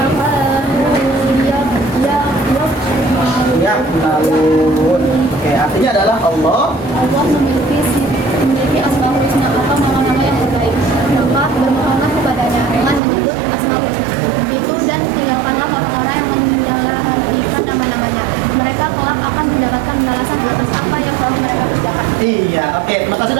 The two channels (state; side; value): drops out; left; at 13.0 s